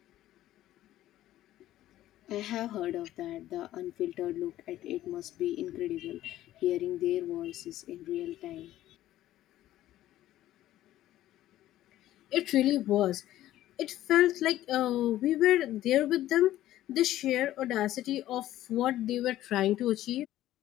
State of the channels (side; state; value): right; quieter; 13.9 dB